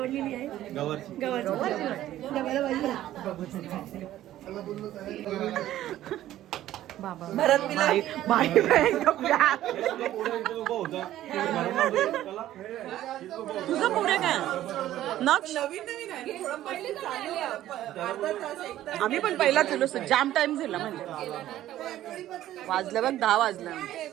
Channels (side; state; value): left; quieter; 13.5 dB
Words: आहे. गवारची डब्याला भाजी. बाबा भरत तुझं पुढे काय आम्ही पण पहिला केलो. जाम टाइम झाला म्हणजे वाजलं बघ 10 वाजलं.